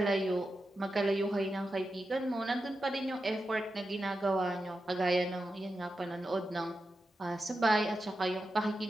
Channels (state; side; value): normal; both; correlation 0.90